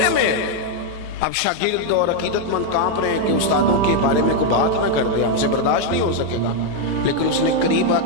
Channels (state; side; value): late; left; 9.8 ms